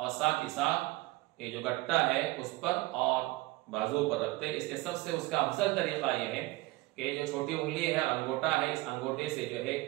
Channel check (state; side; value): quieter; left; 20.6 dB